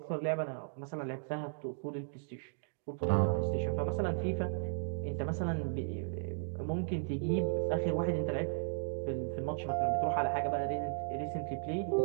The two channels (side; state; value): left; silent; digital silence